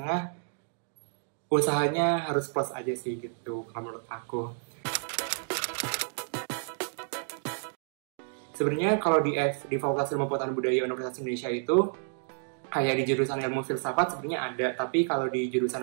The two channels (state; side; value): silent; left; digital silence